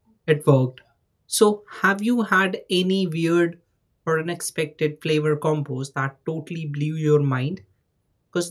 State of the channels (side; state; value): both; identical; correlation 1.00